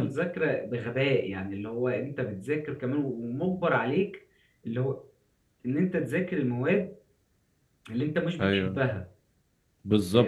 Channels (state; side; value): identical; both; correlation 1.00